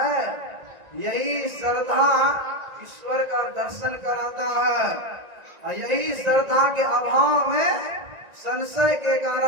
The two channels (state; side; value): late; left; 1.9 ms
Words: यही श्रद्धा ईश्वर का दर्शन कराता है, यही श्रद्धा के अभाव में संशय के